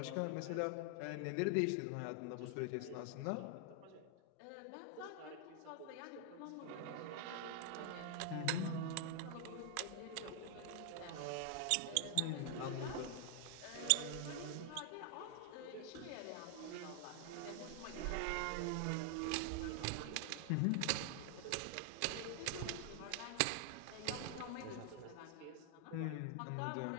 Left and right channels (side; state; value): both; different; correlation 0.00